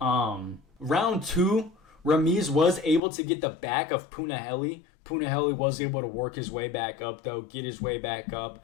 2, Ramiz was able to get the back of Punahele. Punahele was able to work his way back up, though, get his way back up.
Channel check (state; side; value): drops out; right; at 3.0 s